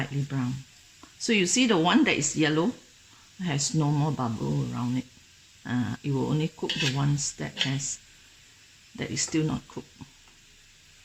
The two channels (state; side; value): identical; both; correlation 1.00